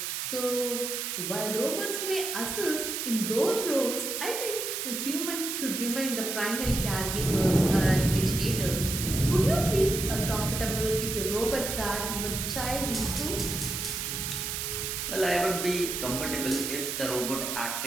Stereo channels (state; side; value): noise; right; hiss, 3 dB below the sound